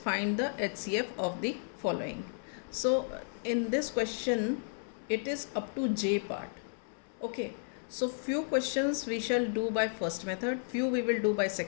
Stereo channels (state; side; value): silent; right; 56 dB below the other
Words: the HCF of the following. So, in this question, it is up to J part. Okay. So, few questions we shall do by first method, few we will do by